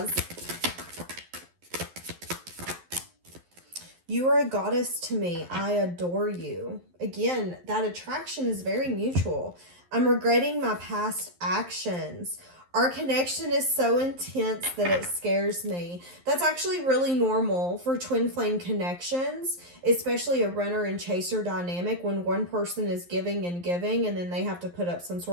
You are a goddess to me. I adore you. Again, that attraction is very mutual. I'm regretting my past actions. Our connection is so intense that it scares me. That's actually really normal for twin flame connections, especially a runner and chaser dynamic when one person is giving and then they have to put up some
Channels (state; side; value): late; left; 11 ms